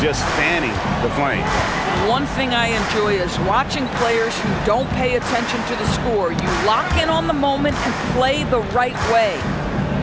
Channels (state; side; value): identical; both; correlation 1.00